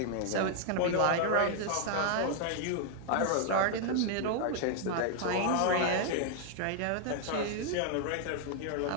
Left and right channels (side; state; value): both; different; correlation 0.00